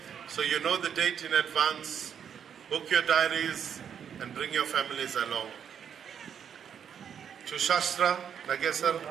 So you know the date in advance. Book your diaries and bring your families along. To Shastra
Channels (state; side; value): quieter; left; 8.1 dB